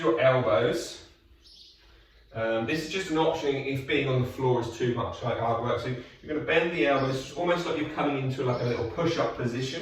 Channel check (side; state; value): both; identical; correlation 1.00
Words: elbows. This is just an option if being on the floor is too much like hard work. So you're going to bend the elbows, almost like you're coming into like a little push-up